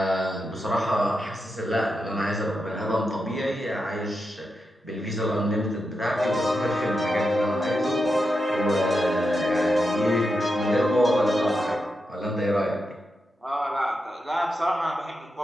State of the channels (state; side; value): normal; both; correlation 0.87